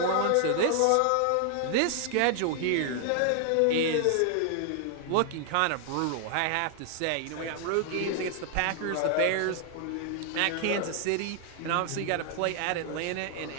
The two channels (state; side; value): different; both; correlation 0.00